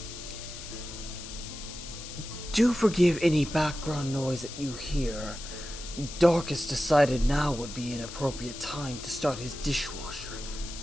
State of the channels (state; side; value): noise; left; hiss, 11 dB below the sound